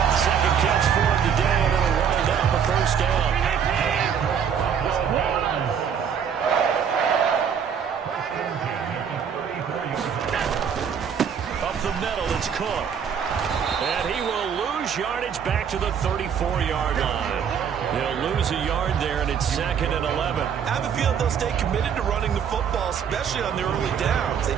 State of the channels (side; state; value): left; quieter; 7.6 dB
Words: Second catch for him today, and it'll wind up a first down. Up the middle, it's Cook. And he will lose yardage back to the 34-yard line. He'll lose a yard there, and it's 2nd and 11. I have a feeling they'll stay committed to running the football, especially on their early downs. They